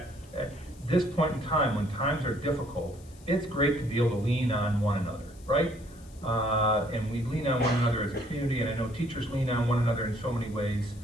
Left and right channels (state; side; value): noise; left; hiss, 25 dB below the sound